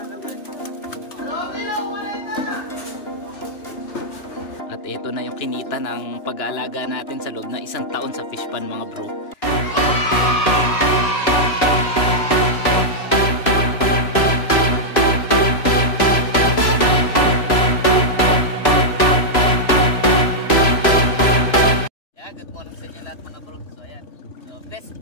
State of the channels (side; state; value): right; late; 3.0 ms